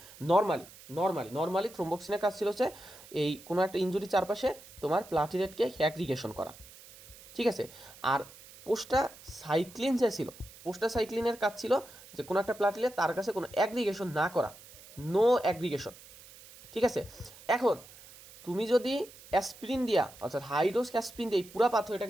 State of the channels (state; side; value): noise; right; hiss, 20 dB below the sound